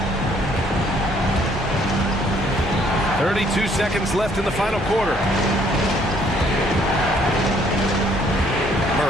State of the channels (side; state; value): both; normal; correlation 0.64